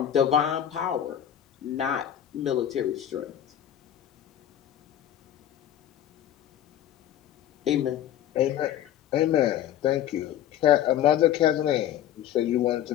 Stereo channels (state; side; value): quieter; right; 11.0 dB